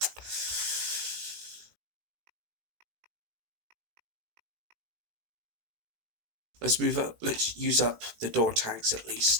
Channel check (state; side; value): late; left; 18 ms